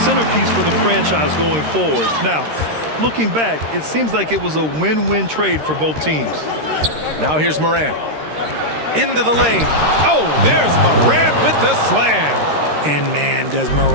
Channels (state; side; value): late; left; 13 ms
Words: for the franchise going forward. Now, looking back, it seems like it was a win-win trade for both teams. Now here's Morant. Into the lane. Oh, there's Morant with the slam. And man, does